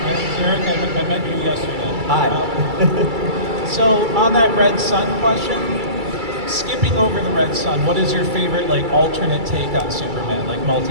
my name's Eric. I met you yesterday. Hi. So on that Red Sun question, skipping over the Red Sun, what is your favorite like alternate take on Superman, like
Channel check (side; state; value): left; late; 2.3 ms